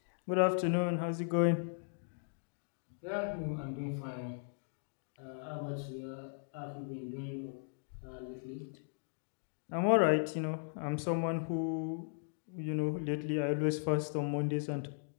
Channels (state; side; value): silent; right; digital silence